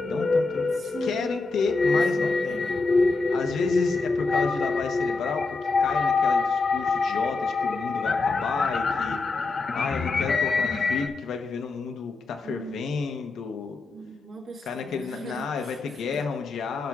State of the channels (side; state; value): right; quieter; 3.8 dB